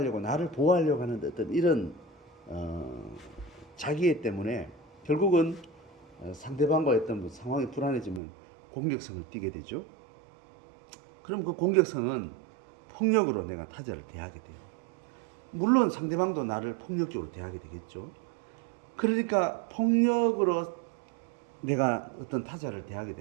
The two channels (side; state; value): left; drops out; at 8.2 s